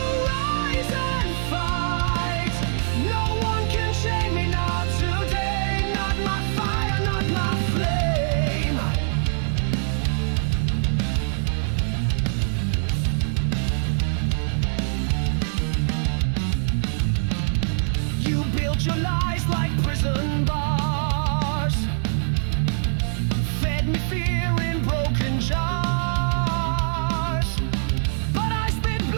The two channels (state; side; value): silent; left; digital silence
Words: rise and fight. No one can chain me, not today. Not my fire, not my flame. You built your lies like prison bars, fed me fear in broken jars. But I spit